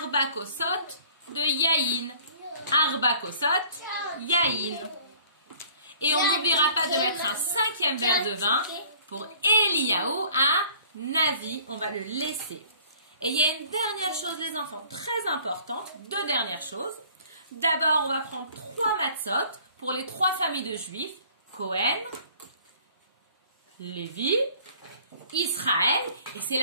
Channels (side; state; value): both; inverted; correlation -0.53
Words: Kosot de Yahin. Arba Kosot, Yahin. Et on n'oubliera pas de mettre un 5e verre de vin pour Eliyahu à Navi. On va le laisser. Et il y a une dernière chose, les enfants, très importante. 2 dernières choses. D'abord, on va prendre 3 matzot pour les 3 familles de Juifs. Cohen, Lévi, Israël. Et c'est